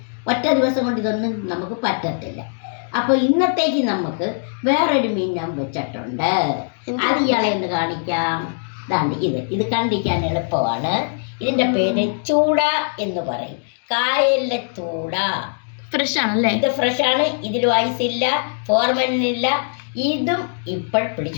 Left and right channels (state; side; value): silent; right; digital silence